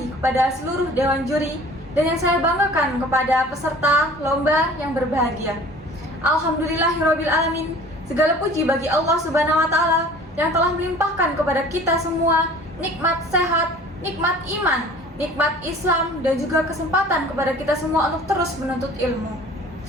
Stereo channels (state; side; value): normal; both; correlation 0.47